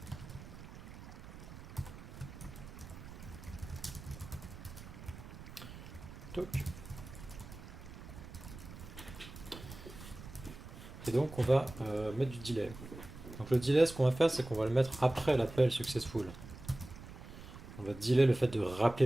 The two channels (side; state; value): right; noise; rumble, 14 dB below the sound